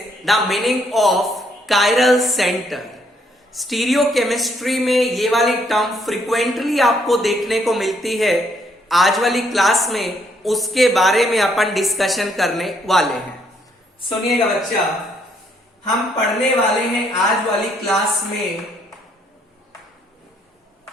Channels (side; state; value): both; normal; correlation 0.70